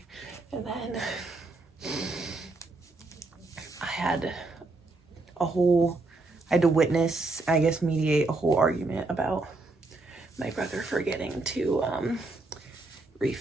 then I had to witness, I guess mediate a whole argument about my brother forgetting to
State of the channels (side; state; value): left; quieter; 3.3 dB